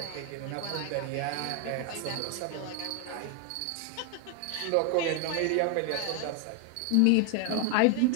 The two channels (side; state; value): both; different; correlation 0.01